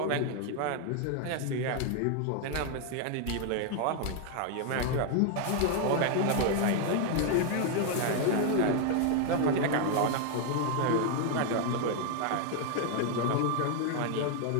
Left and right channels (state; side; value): different; both; correlation 0.01